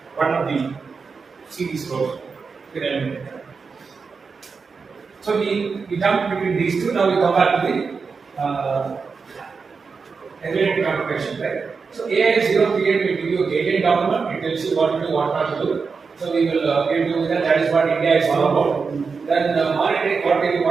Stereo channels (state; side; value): quieter; left; 5.0 dB